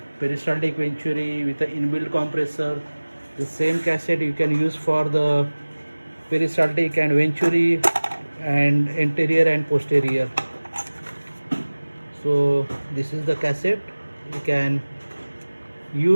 peristaltic venturi with the inbuilt compressor. The same cassette you can use for the peristaltic and venturi and anterior and posterior. So this is the cassette. You can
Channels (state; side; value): inverted; both; correlation -1.00